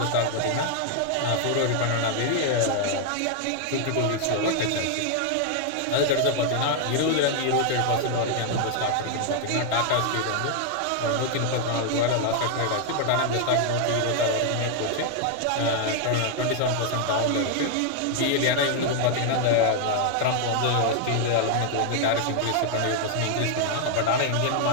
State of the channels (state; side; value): different; both; correlation 0.00